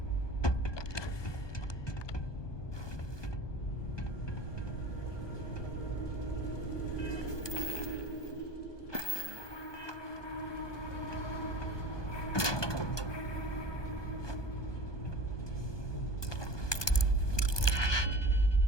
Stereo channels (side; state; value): right; late; 1.2 ms